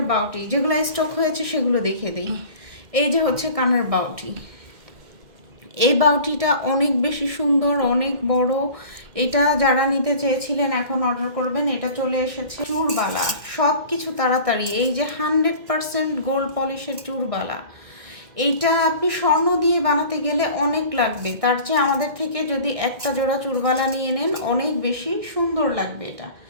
বাউটি, যেগুলো স্টক হয়েছে সেগুলো দেখিয়ে দিই। এই যে হচ্ছে কানের বাউটি। এই বাউটিটা অনেক বেশি সুন্দর, অনেক বড়। এটা যারা নিতে চেয়েছিলেন এখন অর্ডার করবেন। এটা চলে এসেছে চুরবালা, সব কিছু তাড়াতাড়ি। এই যে 100% গোল্ড পলিশের চুরবালা, এইটা আপনি স্বর্ণ দিয়ে বানাতে গেলে অনেক লাগবে। তার চেয়ে আমাদের থেকে যদি একটা জোড়া চুরবালা নিয়ে নেন, অনেক বেশি সুন্দর লাগবে।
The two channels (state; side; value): late; left; 2.1 ms